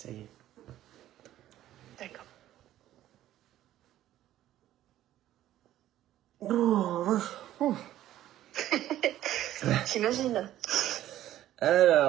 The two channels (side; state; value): left; quieter; 13.2 dB